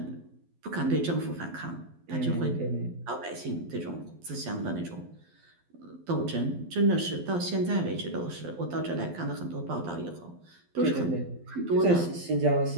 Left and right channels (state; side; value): late; left; 12 ms